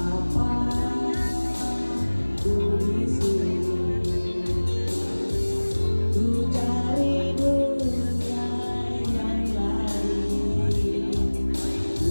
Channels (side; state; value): both; inverted; correlation -1.00